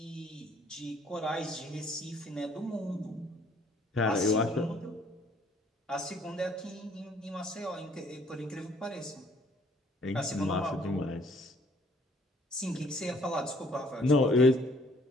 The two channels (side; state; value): both; normal; correlation 0.61